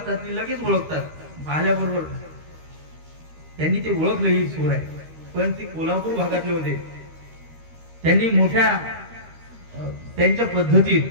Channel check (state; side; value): late; left; 13 ms